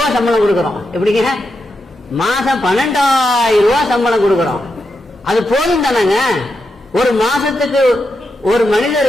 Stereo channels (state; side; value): normal; both; correlation 0.86